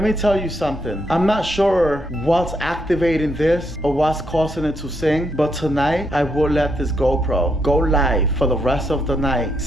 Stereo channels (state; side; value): normal; both; correlation 0.78